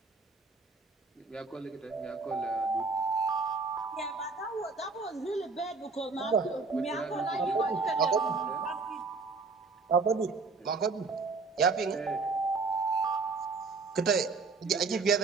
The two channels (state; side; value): quieter; left; 4.3 dB